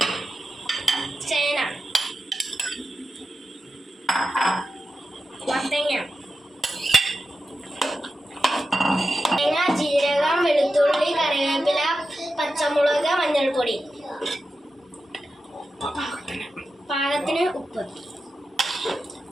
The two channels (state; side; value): normal; both; correlation 0.91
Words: ചേന മത്തങ്ങ തേങ്ങ ജീരകം വെളുത്തുള്ളി കറിവേപ്പില പച്ചമുളക് മഞ്ഞൾപ്പൊടി പാകത്തിന് ഉപ്പ്